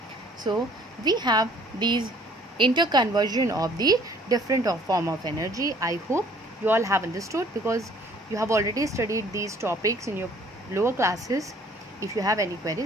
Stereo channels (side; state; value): both; normal; correlation 0.57